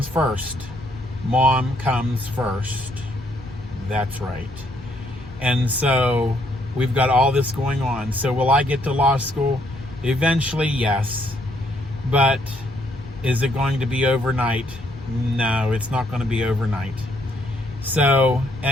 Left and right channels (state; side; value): normal; both; correlation 0.71